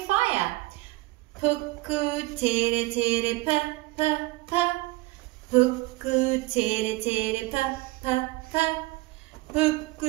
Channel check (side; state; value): left; quieter; 21.4 dB